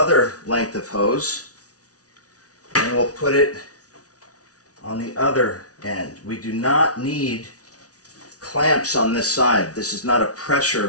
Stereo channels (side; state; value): right; late; 0.68 ms